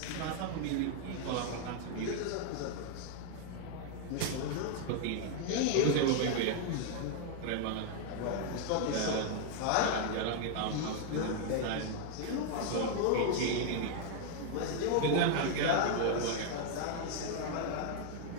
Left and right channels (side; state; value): both; different; correlation 0.00